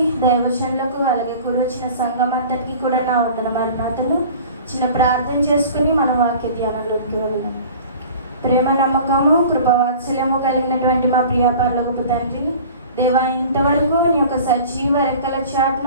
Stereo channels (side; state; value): both; inverted; correlation -0.43